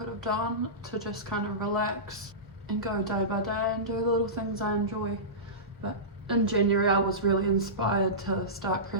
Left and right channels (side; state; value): both; normal; correlation -0.20